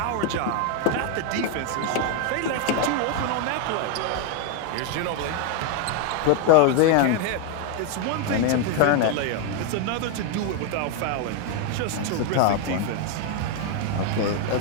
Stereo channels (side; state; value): both; different; correlation 0.01